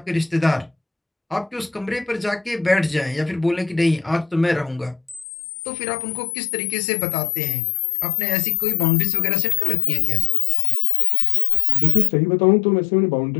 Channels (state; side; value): drops out; right; at 5.2 s